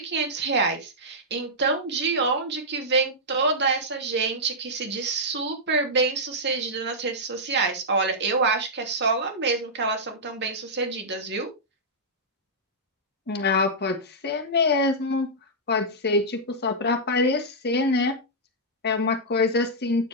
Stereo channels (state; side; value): normal; both; correlation -0.10